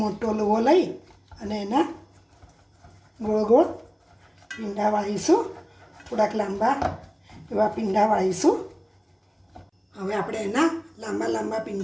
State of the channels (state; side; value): identical; both; correlation 1.00